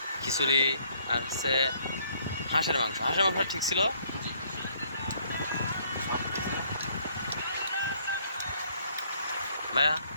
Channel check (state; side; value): inverted; both; correlation -0.64